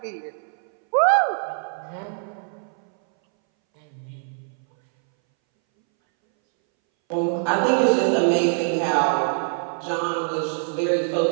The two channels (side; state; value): left; silent; 62 dB below the other